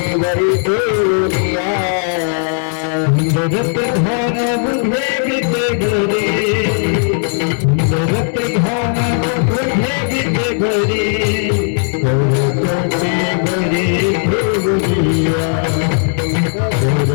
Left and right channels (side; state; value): right; silent; 69 dB below the other